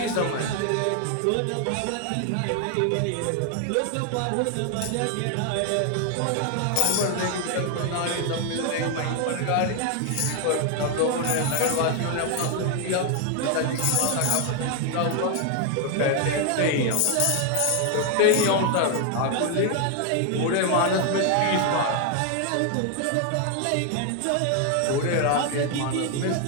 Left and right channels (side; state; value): both; different; correlation 0.00